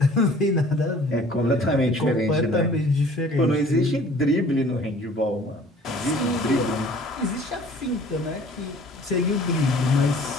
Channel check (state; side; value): normal; both; correlation 0.51